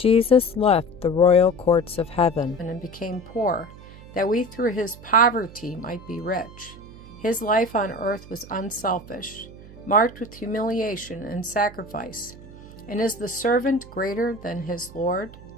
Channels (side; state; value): right; noise; hum, 18 dB below the sound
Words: left the royal courts of heaven and became poor, that we through his poverty might be rich. His life on earth was unselfish, marked with humiliation and sacrifice. And is the servant greater than his Lord?